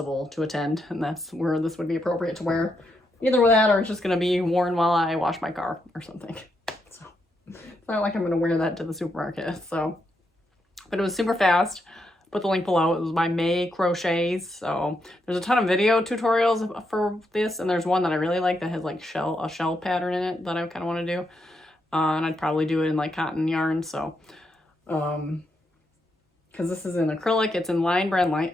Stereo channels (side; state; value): both; normal; correlation 0.81